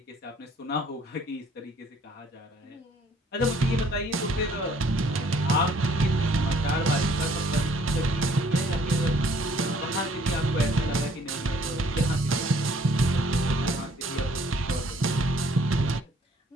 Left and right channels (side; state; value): both; normal; correlation 0.61